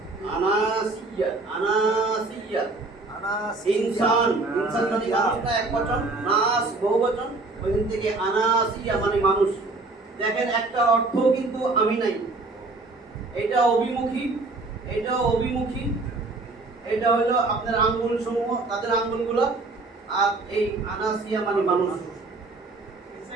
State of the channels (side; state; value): left; quieter; 3.4 dB